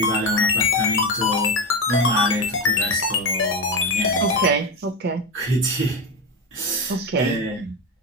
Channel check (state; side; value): normal; both; correlation 0.16